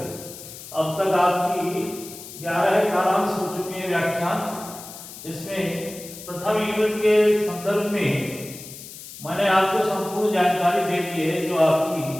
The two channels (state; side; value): noise; left; hiss, 14 dB below the sound